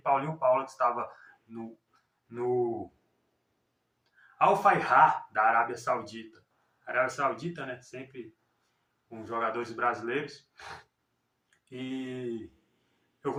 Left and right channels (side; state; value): both; identical; correlation 1.00